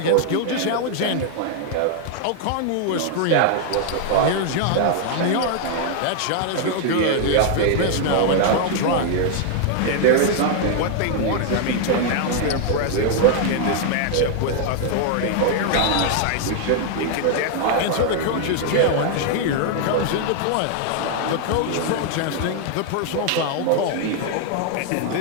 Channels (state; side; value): different; both; correlation 0.00